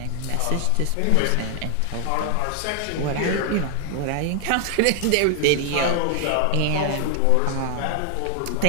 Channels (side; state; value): both; different; correlation 0.00